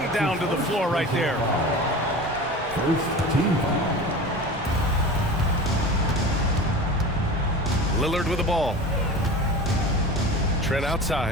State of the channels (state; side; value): normal; both; correlation 0.34